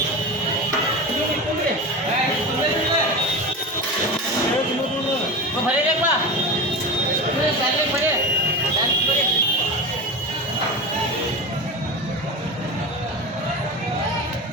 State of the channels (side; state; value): both; normal; correlation 0.25